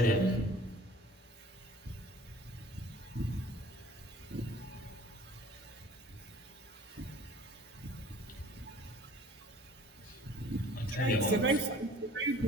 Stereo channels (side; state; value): both; normal; correlation 0.49